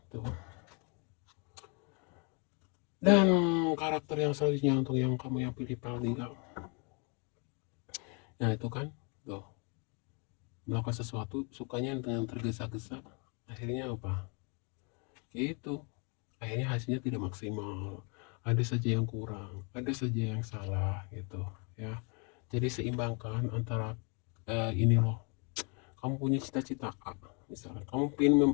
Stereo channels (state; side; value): quieter; right; 34.9 dB